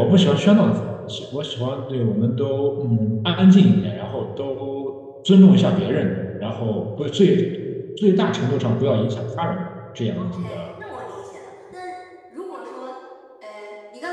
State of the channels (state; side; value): identical; both; correlation 1.00